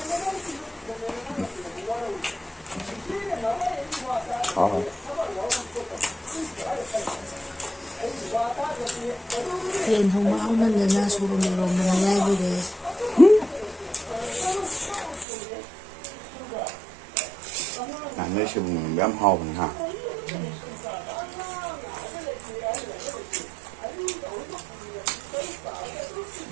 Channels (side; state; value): left; drops out; at 15.2 s